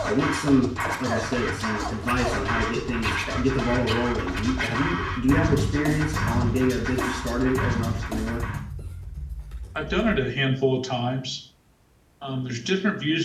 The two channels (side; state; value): both; identical; correlation 1.00